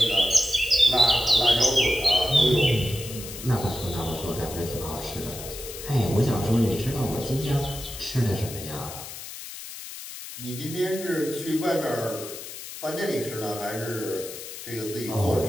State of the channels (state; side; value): noise; left; hiss, 11 dB below the sound